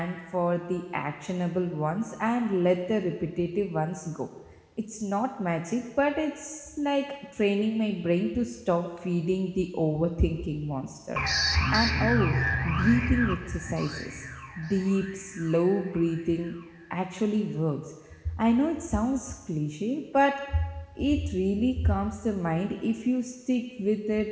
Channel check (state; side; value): identical; both; correlation 1.00